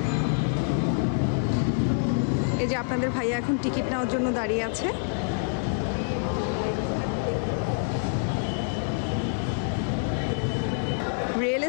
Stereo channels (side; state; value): right; silent; 60 dB below the other